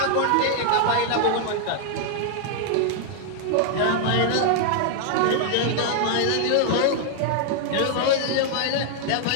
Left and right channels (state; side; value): different; both; correlation 0.00